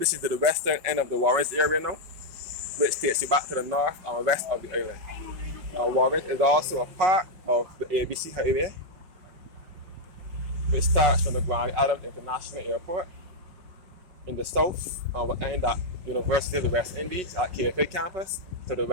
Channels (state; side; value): late; left; 5.3 ms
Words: the western end of the Warrens area now, which takes you back to the north and west of the island. Warrens is also a part of the ABC Highway, which starts from the Grand Adams International Airport in the south and will end at University of the West Indies at KFA campus to the